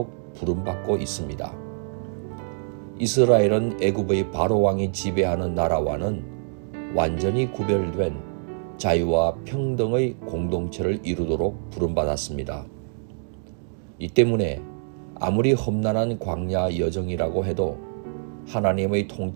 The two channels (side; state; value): left; silent; digital silence